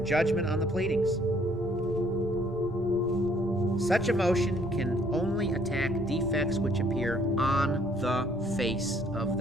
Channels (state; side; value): normal; both; correlation 0.63